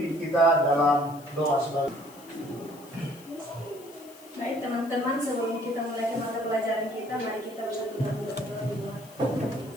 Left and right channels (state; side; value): noise; left; hiss, 22 dB below the sound